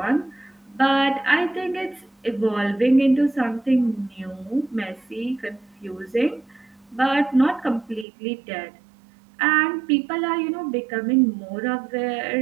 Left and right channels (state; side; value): drops out; left; at 8.1 s